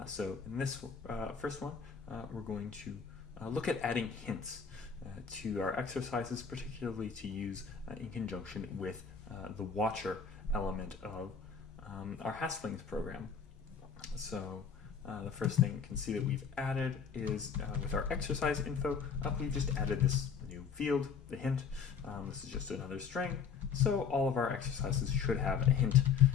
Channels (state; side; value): quieter; right; 6.4 dB